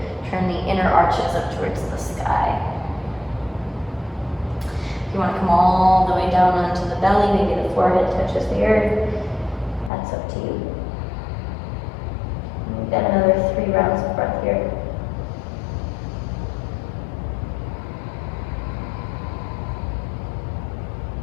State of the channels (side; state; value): right; drops out; at 9.9 s